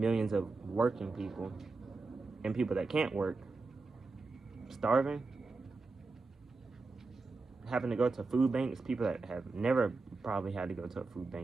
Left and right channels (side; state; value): left; quieter; 3.8 dB